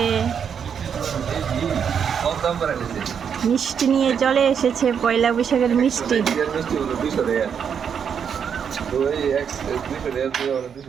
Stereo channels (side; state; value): left; quieter; 7.4 dB